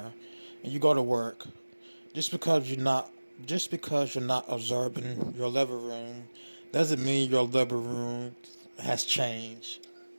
and you go to work, just because you're not observing your living room doesn't mean your living room has changed.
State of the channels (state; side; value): inverted; both; correlation -1.00